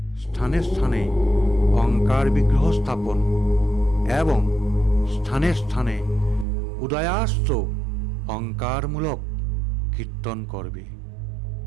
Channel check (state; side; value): drops out; left; at 6.5 s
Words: স্থানে স্থানে ওঙ্কার বিগ্রহ স্থাপন এবং স্থানে স্থানে উদয়াস্ত ওঙ্কারমূলক কীর্তন করবে।